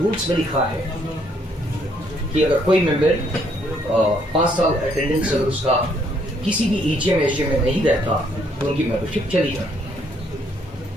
में लिखा है कि अगर कोई मेंबर 5 साल अटेंडेंस अगर उसका किसी भी एजीएम एचजीएम में नहीं रहता तो उनकी मेंबरशिप चली जाती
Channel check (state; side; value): normal; both; correlation 0.68